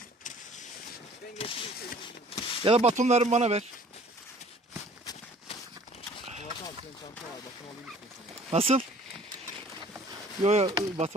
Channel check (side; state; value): both; normal; correlation 0.52